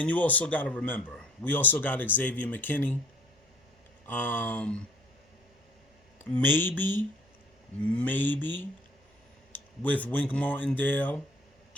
you also got to remember, we also got Xavier McKinney. Maybe with Wink Martindale,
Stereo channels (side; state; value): both; normal; correlation 0.54